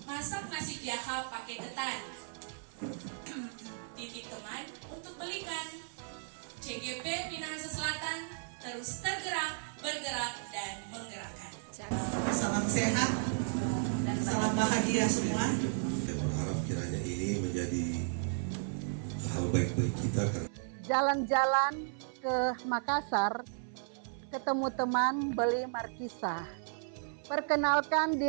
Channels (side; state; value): left; silent; 55 dB below the other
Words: masak nasi jaha pakai ketan. Titip teman untuk belikan. CGP Minahasa Selatan terus tergerak, bergerak, dan menggerakkan. Salam sehat, salam bahagia semua. Saya berharap kiranya ini menjadi hal baik bagi kita. Jalan-jalan ke Makassar, ketemu teman beli markisa. Perkenalkan